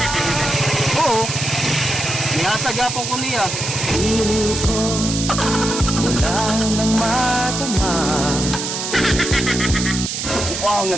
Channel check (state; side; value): noise; right; hiss, 4 dB below the sound